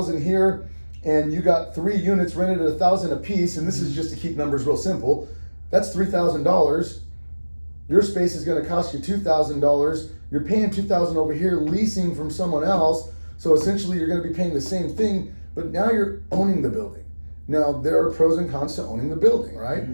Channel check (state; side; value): inverted; both; correlation -1.00